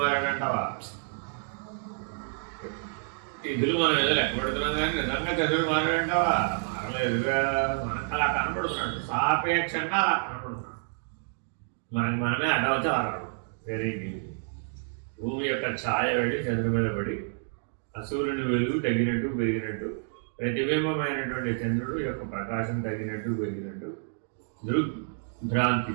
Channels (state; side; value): silent; left; 59 dB below the other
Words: తిథులు మనం ఏదో లెక్క పెడుతున్నాం కానీ నిజంగా చంద్రుడు మారాడంటావా? మారలేదుగా. మనకు అలా కనపడుతున్నాడు, సాపేక్షంగా అలా కనపడుతున్నాడు. మనకి మనమే అడ్డవచ్చు అలా కనపడుతుంది. వేరే భూమి యొక్క ఛాయ పడి చంద్రుడి మీద పడి సూర్యుని వెలుగు తగ్గినట్టు పెరిగినట్టు, ప్రతిబింబమైనటువంటి చంద్రుడు యొక్క ప్రకాశం తగ్గినట్టు పెరిగినట్టు దృగ్భ్రాంతి